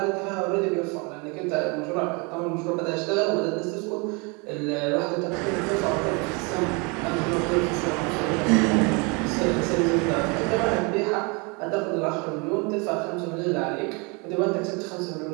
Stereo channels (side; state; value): left; quieter; 30.5 dB